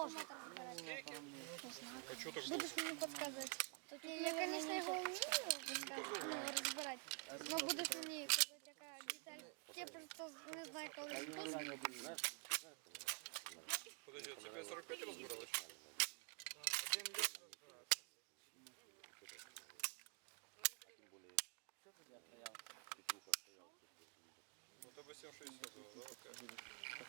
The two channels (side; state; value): left; quieter; 35.5 dB